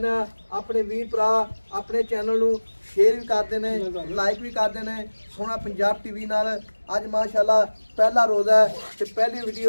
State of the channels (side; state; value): both; inverted; correlation -1.00